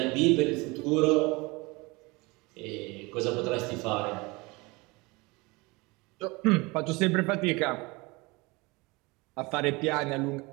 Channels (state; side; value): quieter; left; 24.8 dB